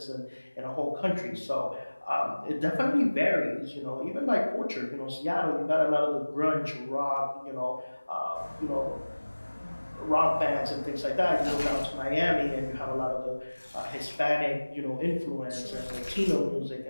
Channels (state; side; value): inverted; both; correlation -1.00